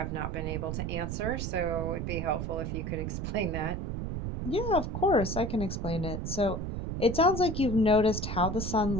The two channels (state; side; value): noise; right; rumble, 3 dB below the sound